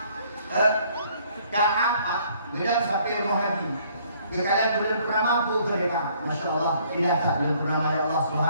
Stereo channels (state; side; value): inverted; both; correlation -0.62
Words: Kaab, gedang sampai rumah Nabi. Kekalian bulan purnama pun mereka, Masya Allah, tidak tak bulan purnama ya Allah